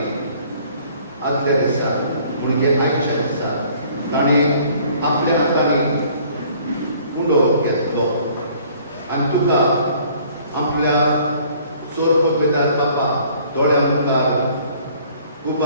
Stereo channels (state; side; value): inverted; both; correlation -0.56